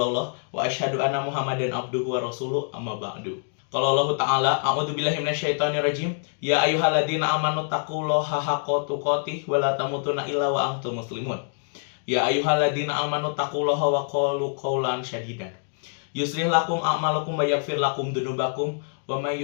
wa asyhadu anna Muhammadan abduhu wa rasuluh, amma ba'du. Qala Allah Ta'ala, a'udzubillahi minasyaitonirrajim. Ya ayyuhalladzina amanu taqullaha haqqa tuqatih wa la tamutunna illa wa antum muslimun. Ya ayyuhalladzina amanu taqullaha wa qulu qawlan sadidan. Yuslih lakum a'malakum wa yaghfir lakum dzunubakum wa may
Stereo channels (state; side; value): silent; right; digital silence